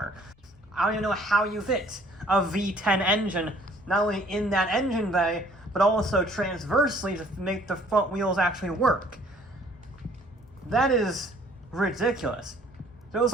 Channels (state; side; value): normal; both; correlation 0.58